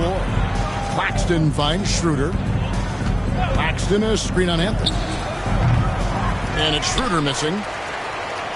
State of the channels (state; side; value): identical; both; correlation 1.00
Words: Claxton finds Schroeder. Claxton is screen on Anthony. And it's Schroeder missing.